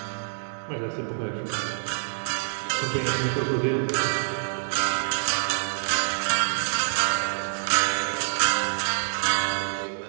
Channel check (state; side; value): silent; left; digital silence